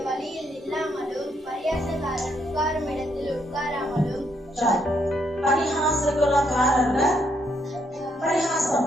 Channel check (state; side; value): normal; both; correlation 0.74